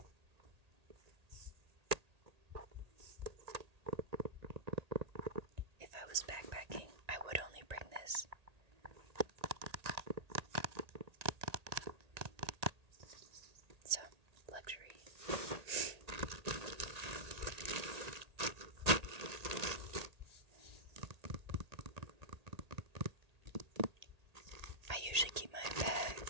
If I was backpacking, I would only bring this. So, luxury. I usually keep my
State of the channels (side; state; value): left; late; 1.8 ms